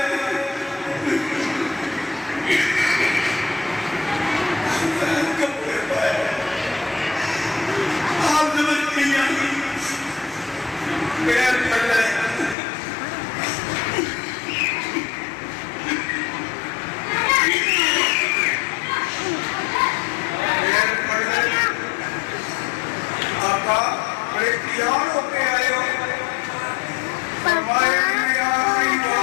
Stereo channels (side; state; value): right; drops out; at 12.6 s